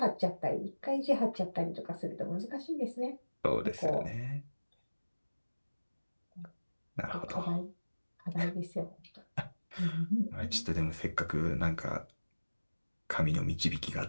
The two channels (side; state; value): both; inverted; correlation -1.00